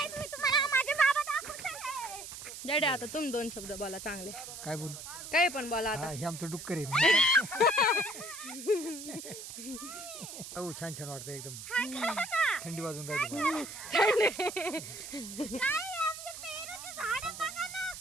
मी तुम्हाला माझे बाबा दाखवते. डॅडी आता तुम्ही दोन शब्द बोला चांगले. काय बोलू? काही पण बोला आता. हे आमचं डुक्कर आहे. हो छान छान वाटतं एकदम. थंडी वाजून राहिली. काय आमचे पेरूचे झाड बघा ना.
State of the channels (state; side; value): noise; right; hiss, 10 dB below the sound